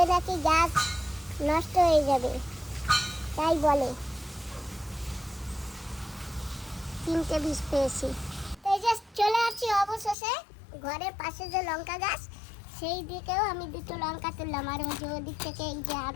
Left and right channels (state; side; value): drops out; right; at 10.2 s